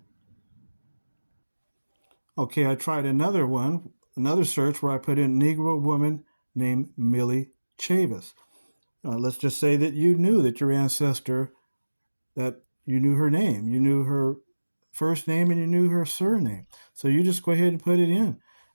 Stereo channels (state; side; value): inverted; both; correlation -1.00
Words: Okay, I tried another search where I put in Negro woman named Millie Chavis. Let's just say that you knew that your ancestor, that you knew her name, you knew her first name, and you knew her surname. So you just go ahead and put it in.